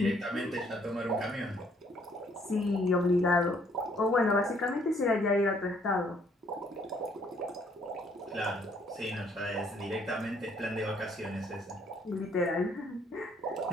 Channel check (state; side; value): normal; both; correlation 0.65